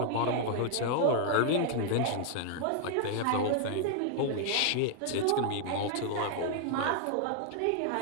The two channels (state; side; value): different; both; correlation 0.00